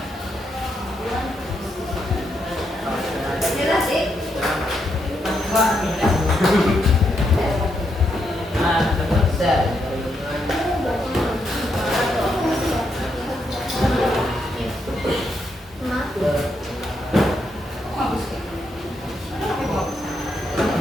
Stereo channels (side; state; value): both; normal; correlation 0.80